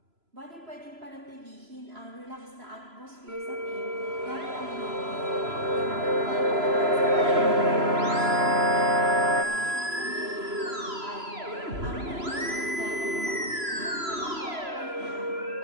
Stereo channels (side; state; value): left; late; 3.0 ms